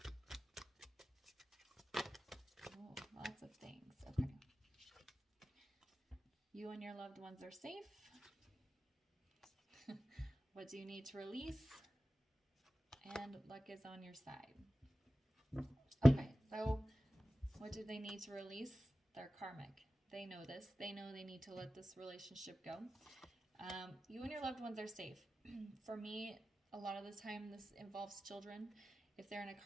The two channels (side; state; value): both; normal; correlation 0.95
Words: Oh, lots of things. Okay. You and your loved ones are safe. What do you need to release? And luck is on your side. Okay, so what do they need to release? Their karmic. They know this. They know they need to let this relationship go. You and your loved ones are safe. For me, a lot of the time this involves children. If they're in a